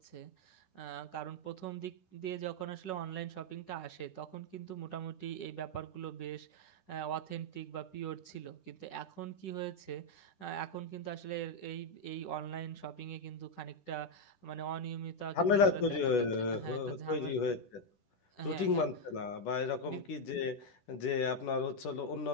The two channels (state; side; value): late; right; 10 ms